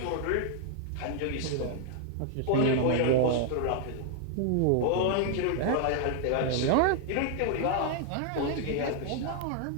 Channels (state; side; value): different; both; correlation 0.00